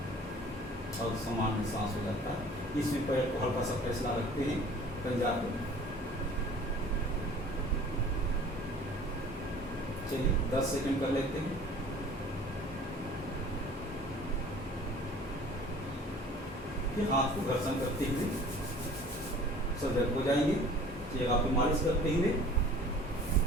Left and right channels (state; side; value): normal; both; correlation 0.47